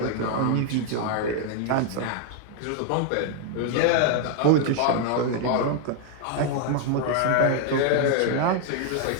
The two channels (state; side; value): different; both; correlation 0.00